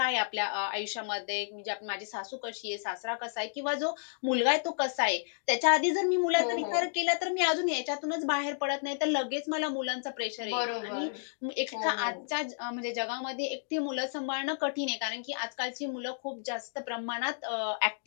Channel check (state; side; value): silent; right; digital silence